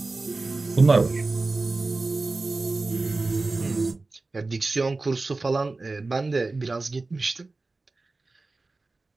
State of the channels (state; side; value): quieter; left; 3.5 dB